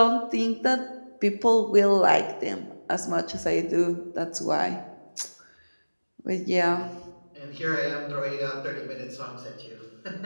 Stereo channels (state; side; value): inverted; both; correlation -1.00